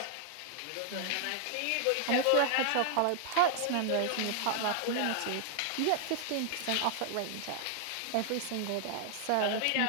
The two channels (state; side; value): different; both; correlation 0.00